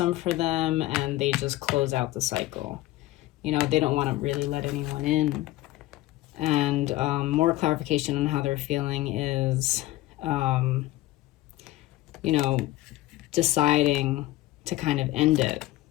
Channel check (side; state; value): right; quieter; 16.7 dB